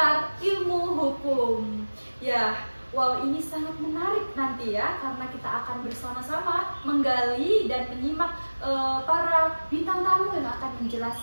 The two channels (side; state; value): both; inverted; correlation -1.00